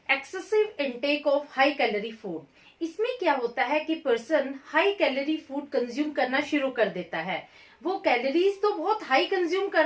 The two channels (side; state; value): both; identical; correlation 1.00